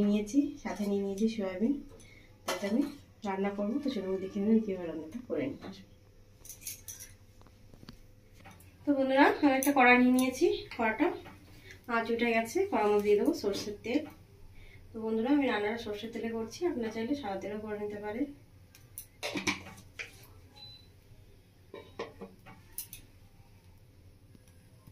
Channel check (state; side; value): identical; both; correlation 1.00